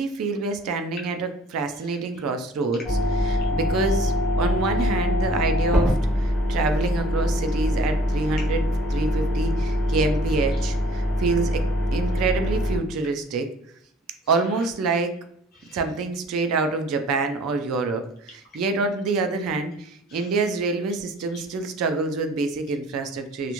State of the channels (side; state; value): both; normal; correlation 0.53